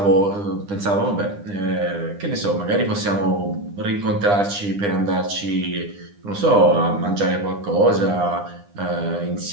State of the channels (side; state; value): left; late; 9.9 ms